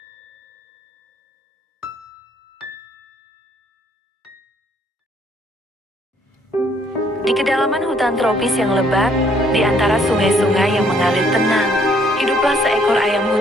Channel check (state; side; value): normal; both; correlation 0.66